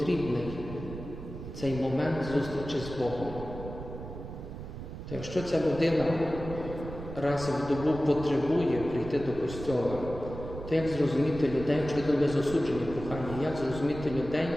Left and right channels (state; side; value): noise; right; rumble, 10 dB below the sound